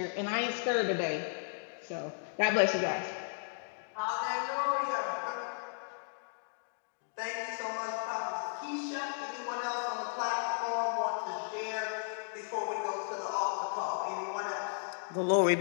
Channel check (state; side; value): silent; right; digital silence